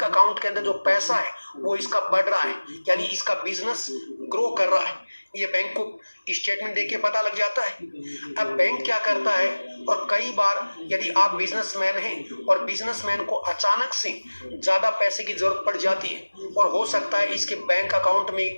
अकाउंट के अंदर जो पैसा है वो इसका बढ़ रहा है, यानी इसका बिजनेस ग्रो कर रहा है। ये बैंक को स्टेटमेंट देके पता लग जाता है। अब बैंक क्या करता है, और कई बार यदि आप बिजनेसमैन हैं और बिजनेसमैन को अचानक से ज्यादा पैसे की जरूरत पड़ जाती है और हो सकता है इसके बैंक अकाउंट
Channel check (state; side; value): inverted; both; correlation -1.00